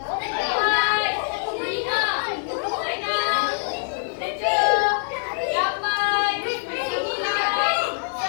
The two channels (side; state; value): right; silent; digital silence